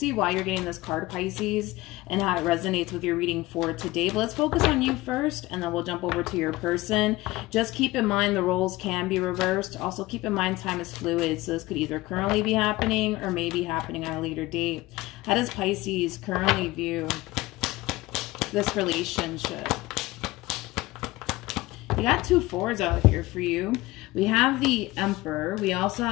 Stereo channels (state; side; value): quieter; right; 19.3 dB